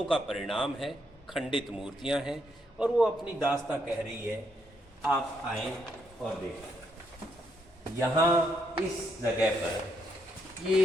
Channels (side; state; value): both; normal; correlation 0.76